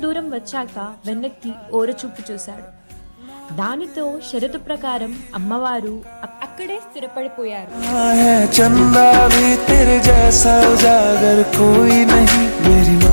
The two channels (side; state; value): both; inverted; correlation -1.00